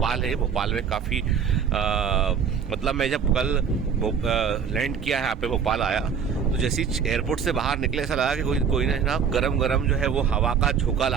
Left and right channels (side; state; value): left; quieter; 6.9 dB